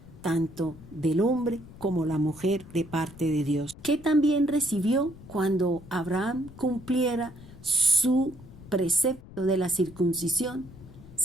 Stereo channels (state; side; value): noise; left; rumble, 18 dB below the sound